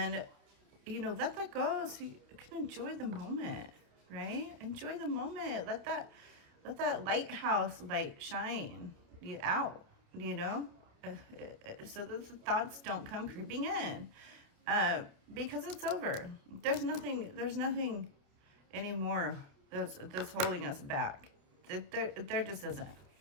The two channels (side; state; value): left; late; 29 ms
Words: you know, let that go so you can enjoy the moment, right? Enjoy the moment. Let that lighthouse light shine you out, you know, so that the thoughts don't come creeping in, because it's over. There's nothing anymore that's holding us back. There just isn't.